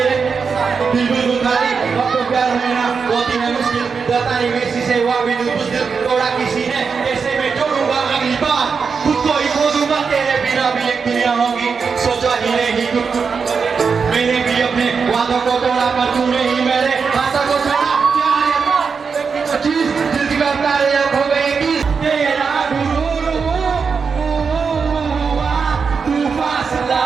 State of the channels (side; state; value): left; quieter; 5.5 dB